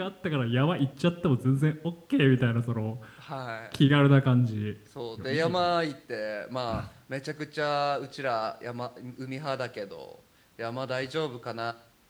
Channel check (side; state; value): both; identical; correlation 1.00